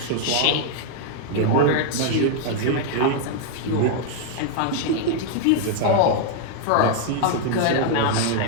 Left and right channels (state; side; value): different; both; correlation 0.00